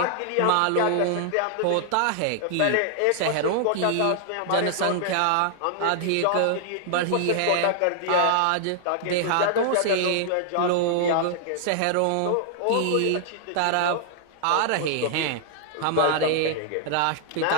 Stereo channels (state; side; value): different; both; correlation 0.00